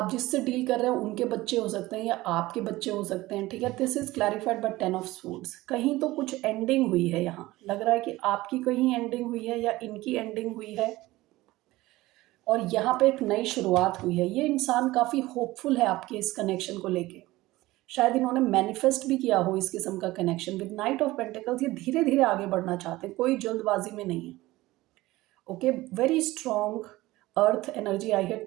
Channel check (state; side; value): quieter; left; 18.4 dB